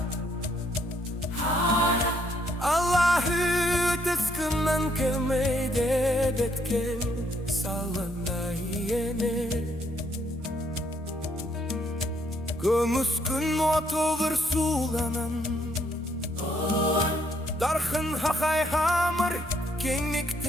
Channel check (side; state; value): both; normal; correlation 0.70